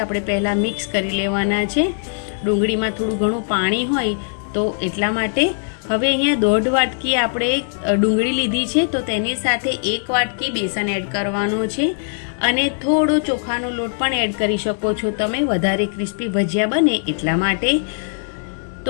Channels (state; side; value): silent; right; digital silence